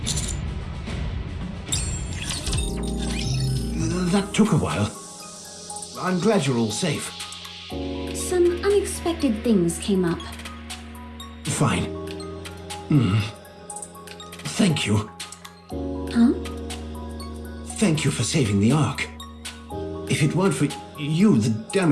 That took a while. I'm glad you're all safe. Some unexpected things came up. Fine. Thank you. Huh? Thank you for saving the Ark. If it weren't for you, the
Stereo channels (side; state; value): both; identical; correlation 1.00